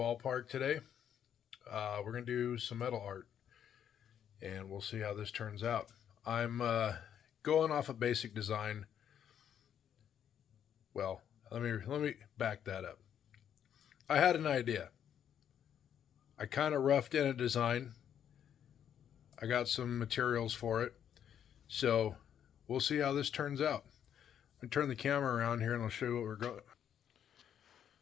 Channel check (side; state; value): right; quieter; 9.2 dB